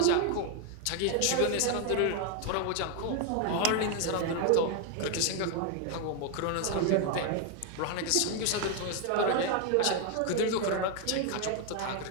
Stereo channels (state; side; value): different; both; correlation 0.01